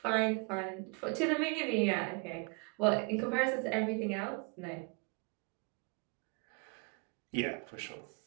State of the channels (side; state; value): left; quieter; 33.0 dB